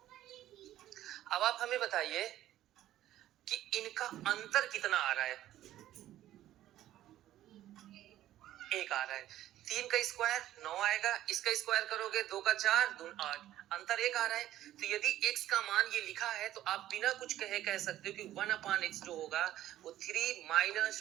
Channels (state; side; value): quieter; left; 13.4 dB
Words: अब आप हमें बताइए कि इनका अंतर कितना आ रहा है। 1 आ रहा है। 3 का स्क्वायर 9 आएगा, इसका स्क्वायर करोगे 2 का 4 2 8, अंतर 1 आ रहा है। तो यदि x का मान ये लिखा है तो आप बिना कुछ कहे कह सकते हो कि 1/x जो होगा वो 3 माइनस